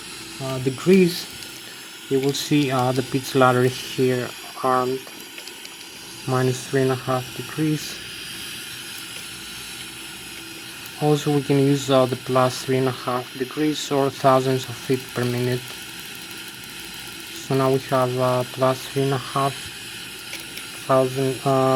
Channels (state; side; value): identical; both; correlation 1.00